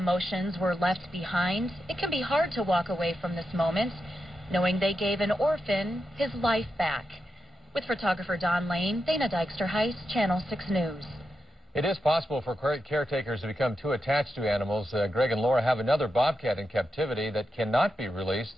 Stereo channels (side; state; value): both; normal; correlation 0.87